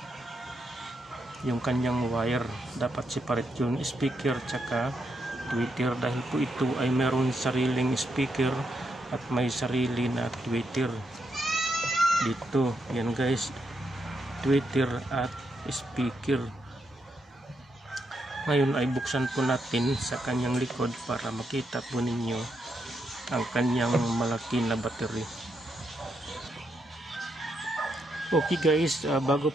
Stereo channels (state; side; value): normal; both; correlation 0.81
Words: Yung kanyang wire dapat separate, yung speaker tsaka tweeter, dahil po ito ay meron sariling speaker at may sarili na tweeter dito. Yan guys, tweeter at speaker. Ngayon ay buksan po natin sa kanyang likod para makita po ninyo ang kanyang malaki na battery. Okay guys, bago